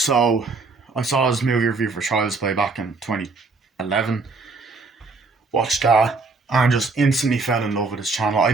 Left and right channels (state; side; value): quieter; left; 3.9 dB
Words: I saw his movie review for Child's Play back in 2011, watched that, and just instantly fell in love with his channel. I